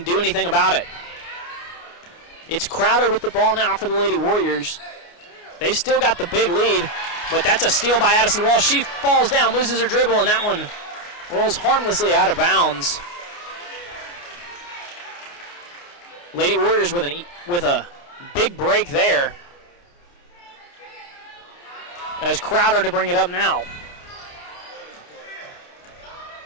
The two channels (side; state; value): right; late; 29 ms